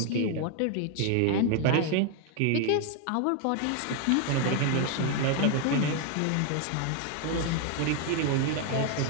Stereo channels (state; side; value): different; both; correlation 0.00